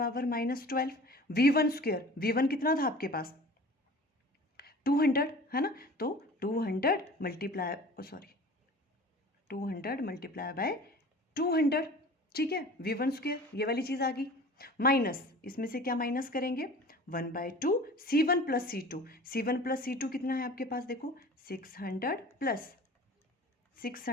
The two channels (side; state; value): both; normal; correlation 0.41